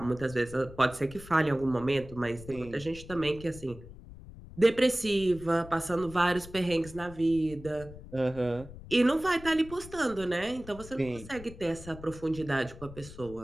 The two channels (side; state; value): left; noise; rumble, 16 dB below the sound